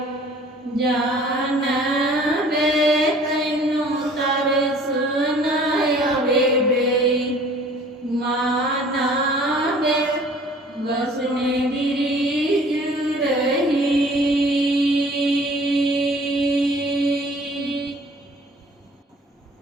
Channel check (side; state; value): both; normal; correlation 0.52